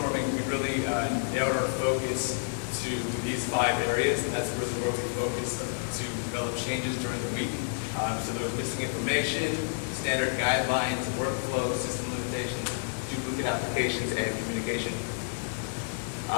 we really narrowed our focus to these 5 areas, and that's really where we focused to develop changes during the week. So there was missing information, standard guidelines, workflow, system limitations, duplicate applications, and communication.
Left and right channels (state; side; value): silent; right; 58 dB below the other